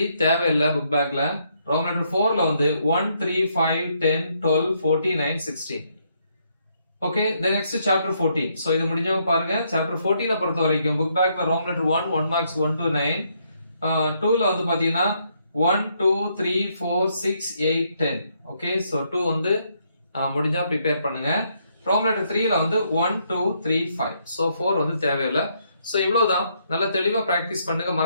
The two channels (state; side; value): inverted; both; correlation -0.74